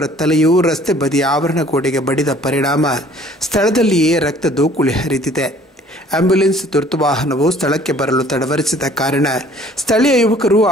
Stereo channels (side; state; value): both; normal; correlation 0.54